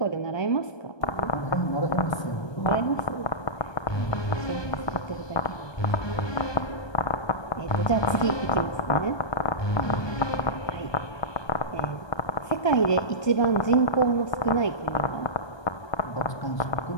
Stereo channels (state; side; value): late; right; 1.2 ms